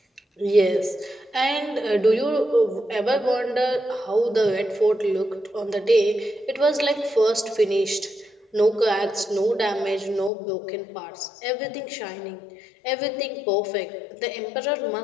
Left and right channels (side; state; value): right; drops out; at 10.3 s